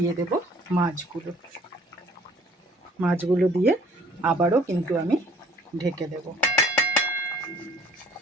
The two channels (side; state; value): both; normal; correlation 0.55